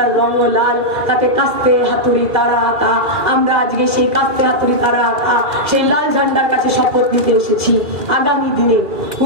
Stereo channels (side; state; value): left; late; 2.4 ms